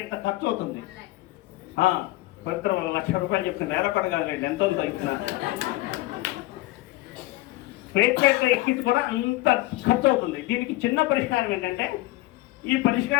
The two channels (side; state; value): right; quieter; 18.6 dB